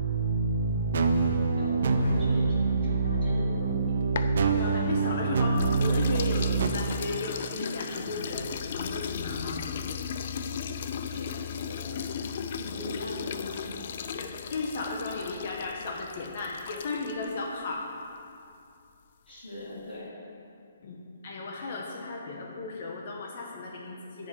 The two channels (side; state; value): both; inverted; correlation -0.66